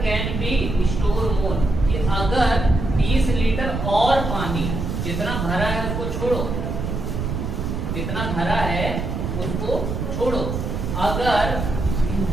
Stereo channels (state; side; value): noise; right; rumble, 3 dB below the sound